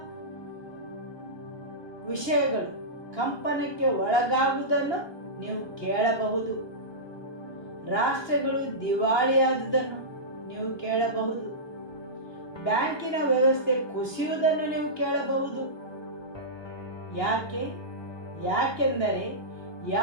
ವಿಷಯಗಳು ಕಂಪನಕ್ಕೆ ಒಳಗಾಗುವುದನ್ನು ನೀವು ಕೇಳಬಹುದು. ರಾಷ್ಟ್ರಗಳು ದಿವಾಳಿಯಾದುದನ್ನು ನೀವು ಕೇಳಬಹುದು. ಬ್ಯಾಂಕಿನ ವ್ಯವಸ್ಥೆ ಕುಸಿಯುವುದನ್ನು ನೀವು ಕೇಳಬಹುದು. ಯಾಕೆಂದರೆ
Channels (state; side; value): late; right; 1.2 ms